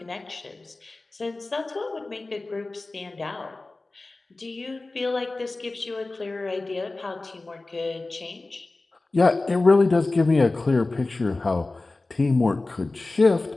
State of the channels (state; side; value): quieter; right; 3.2 dB